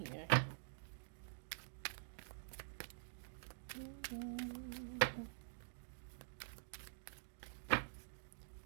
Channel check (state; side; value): silent; left; digital silence